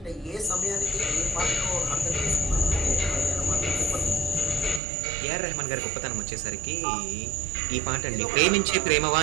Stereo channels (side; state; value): left; drops out; at 4.8 s